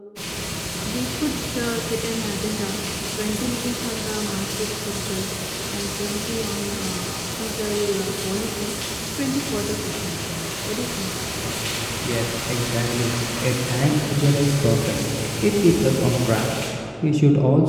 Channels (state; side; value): identical; both; correlation 1.00